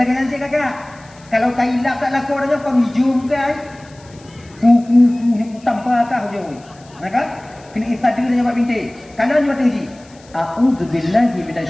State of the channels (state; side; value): noise; left; hiss, 27 dB below the sound